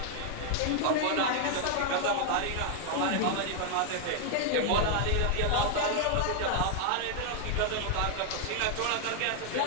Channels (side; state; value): both; different; correlation 0.00